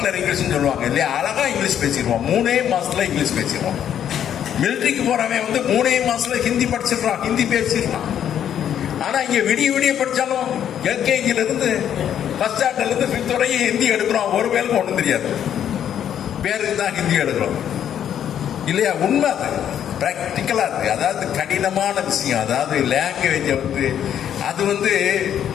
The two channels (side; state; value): right; quieter; 9.7 dB